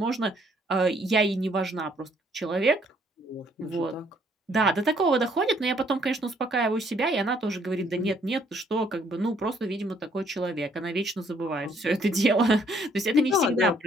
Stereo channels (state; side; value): normal; both; correlation 0.66